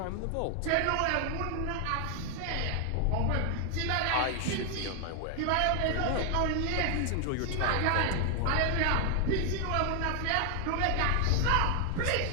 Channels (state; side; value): different; both; correlation 0.00